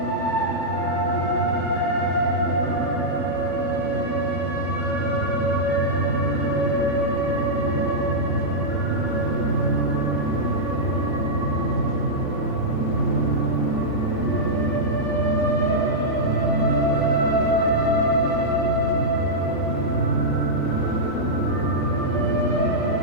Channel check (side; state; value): right; late; 3.5 ms